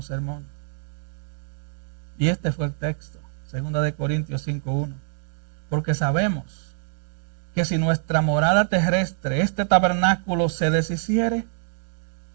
sermón. Y este fue el texto, 2 Corintios 5:1. Porque sabemos que si nuestra morada terrestre, este tabernáculo, se deshiciere,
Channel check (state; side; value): silent; left; 62 dB below the other